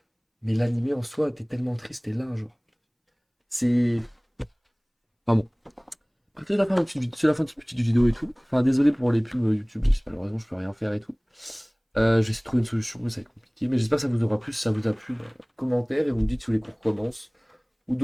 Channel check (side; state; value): both; identical; correlation 1.00